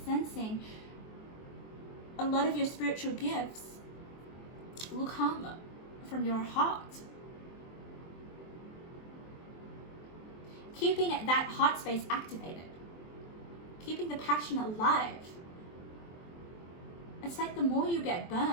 sensing a lot of your spiritual gifts will come from your heart. Keeping that heart space activated. Keeping the passion alive. It's like the more you get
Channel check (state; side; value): late; right; 23 ms